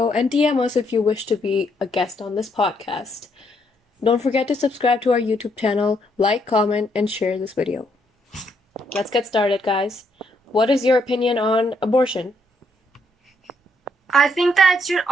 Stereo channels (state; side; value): normal; both; correlation 0.73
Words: and DM us if you wish to be a guest on this podcast. Don't forget to subscribe to our YouTube channel, like, comment, and share this video. Let's get started, guys. What is your opinion on abortion? I think that it should